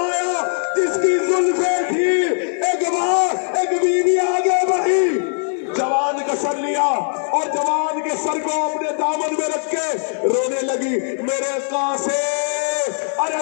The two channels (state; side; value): silent; right; digital silence